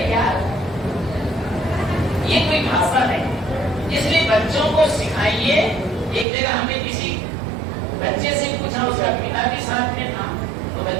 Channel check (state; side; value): drops out; left; at 6.2 s